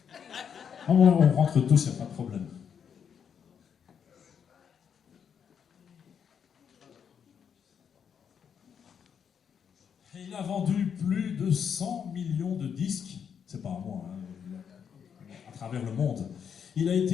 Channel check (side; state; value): right; quieter; 7.5 dB